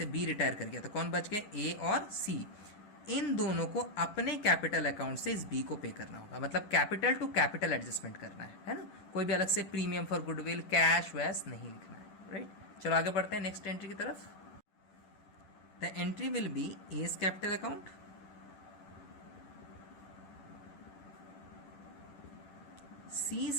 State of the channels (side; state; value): right; late; 10 ms